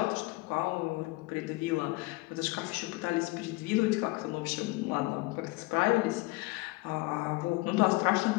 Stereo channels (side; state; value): right; quieter; 22.9 dB